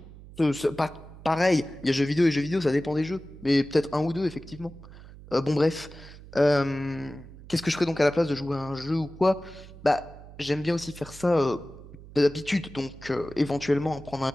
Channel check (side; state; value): right; noise; hum, 18 dB below the sound